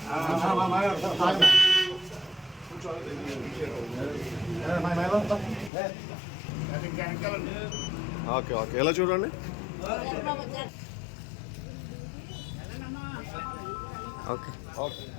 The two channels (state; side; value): drops out; right; at 5.7 s